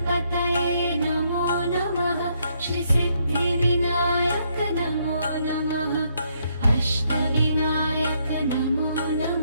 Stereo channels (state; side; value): inverted; both; correlation -0.73